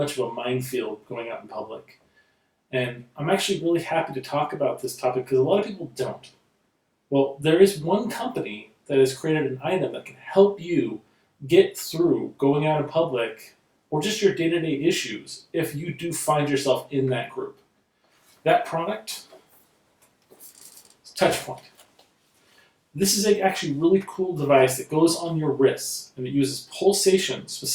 of a minefield going out in public. And I'm actually really happy to talk about this topic because a lot of people don't. Well, there is one company that has created an item that can help you get through going out in public or just your day-to-day issues if you do find yourself in that group. That product is TouchPoint. This is actually really cool device that goes on your wrists, and it uses pulsation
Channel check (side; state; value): both; identical; correlation 1.00